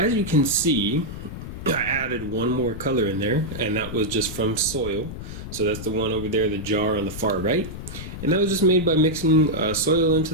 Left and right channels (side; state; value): left; noise; rumble, 10 dB below the sound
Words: you can see, I added one more color in there, and that was just from soil. So that's the one over there, the jar on the far right. And that was just made by mixing soil